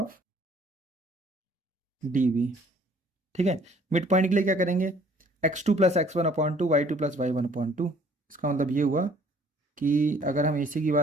D B. ठीक है, मिड पॉइंट के लिए क्या करेंगे, x2 + x1/2, y2 + y1/2। इसका मतलब ये हुआ कि अगर हम AC की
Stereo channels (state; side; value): normal; both; correlation 0.57